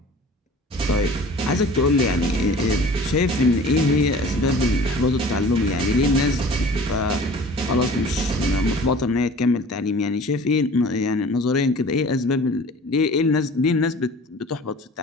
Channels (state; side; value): normal; both; correlation 0.44